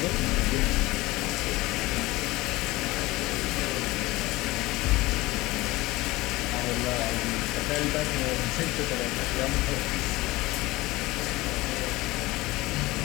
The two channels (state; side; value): quieter; right; 20.1 dB